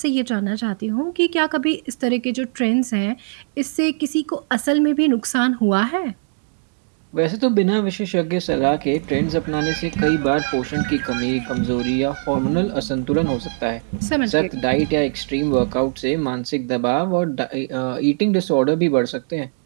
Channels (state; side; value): silent; left; digital silence